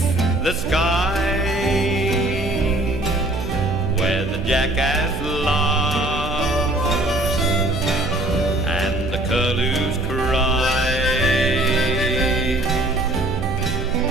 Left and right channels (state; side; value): noise; right; hum, 8 dB below the sound